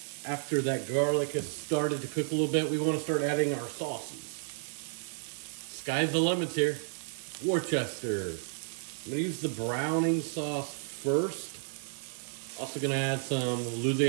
After that garlic has started to cook a little bit, we want to start adding our sauces. Sky's the limit here. Worcester. I'm going to use the browning sauce first. Also going to add some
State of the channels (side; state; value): left; silent; digital silence